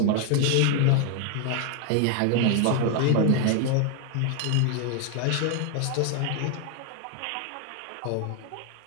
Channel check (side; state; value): both; different; correlation 0.00